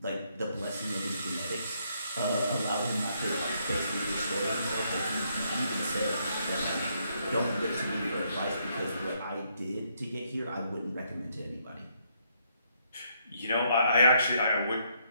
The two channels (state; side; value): inverted; both; correlation -0.73